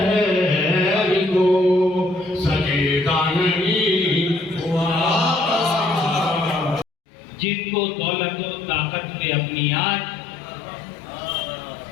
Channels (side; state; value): right; drops out; at 6.9 s